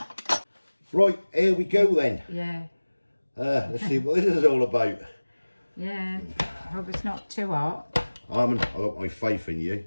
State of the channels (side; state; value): both; inverted; correlation -1.00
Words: Right, here we go then. Yeah. Let's see what this is all about. Yeah. Hope it's not too hot. Amin, I've got my faith in you.